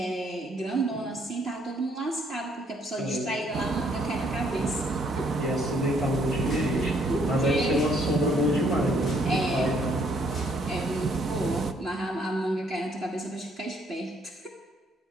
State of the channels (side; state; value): both; normal; correlation 0.67